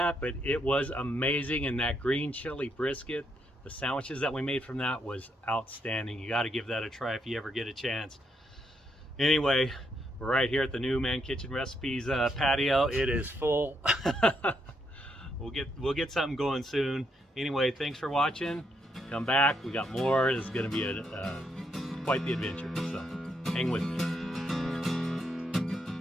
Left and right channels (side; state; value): both; normal; correlation 0.78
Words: but it was amazing. And that green chili brisket, the sandwiches that we made from that was outstanding. You got to give that a try if you ever get a chance. Anyway, we're right here at the new Man Kitchen Recipes patio. It is full. We'll get something going soon. Anyway, thanks for watching. Come back, we got more. It's going to be quite the adventure, so hang with me.